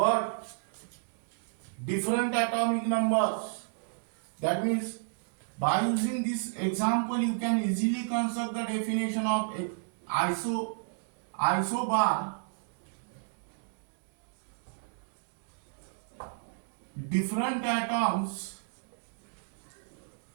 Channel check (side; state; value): left; silent; digital silence